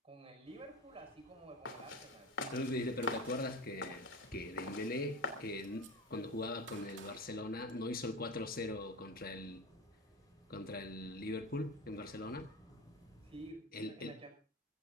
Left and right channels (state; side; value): normal; both; correlation 0.27